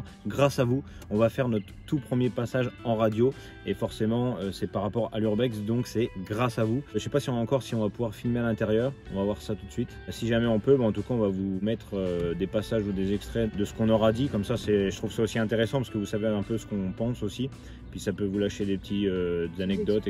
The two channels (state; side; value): identical; both; correlation 1.00